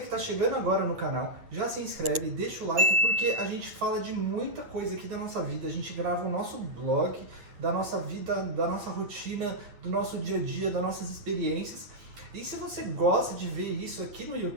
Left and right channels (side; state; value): left; late; 9.0 ms